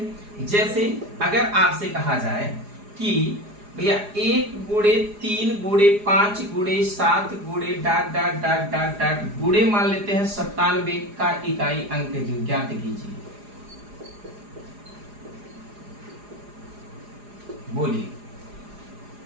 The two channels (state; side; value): late; left; 4.9 ms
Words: जैसे अगर आपसे कहा जाए कि भैया 1 गुणे 3 गुणे 5 गुणे 7 गुणे dot dot dot dot dot गुणे मान लेते हैं 97 का इकाई अंक ज्ञात कीजिए। बोलिए।